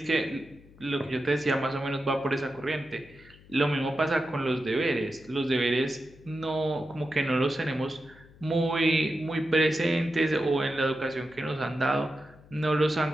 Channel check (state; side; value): noise; left; hum, 24 dB below the sound